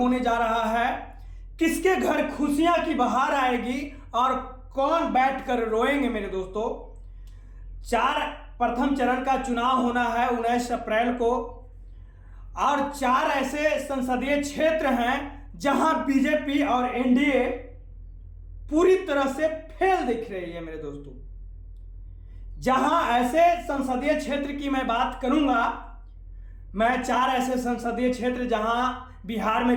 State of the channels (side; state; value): both; identical; correlation 1.00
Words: जा रहा है। किसके घर खुशियां की बहार आएगी और कौन बैठकर रोएंगे मेरे दोस्तों। प्रथम चरण का चुनाव होना है 19 अप्रैल को और 4 ऐसे संसदीय क्षेत्र हैं जहां बीजेपी और एनडीए पूरी तरह से फेल दिख रही है मेरे दोस्तों। जहां ऐसे संसदीय क्षेत्र की मैं बात करूंगा, मैं 4 ऐसे संसदीय क्षेत्र जहां बिहार